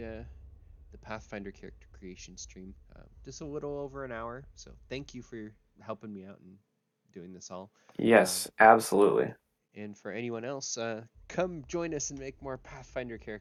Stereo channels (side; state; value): both; identical; correlation 1.00